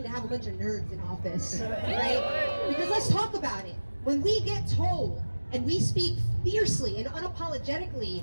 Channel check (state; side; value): inverted; both; correlation -1.00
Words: to have a bunch of nerds in office, right? Because let's talk about it. When we get told and we speak fiercely and unapologetically